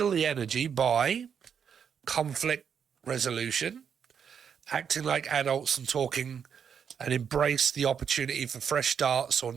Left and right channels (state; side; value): quieter; left; 7.4 dB